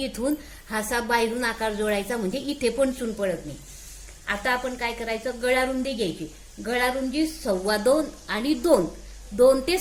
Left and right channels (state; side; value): identical; both; correlation 1.00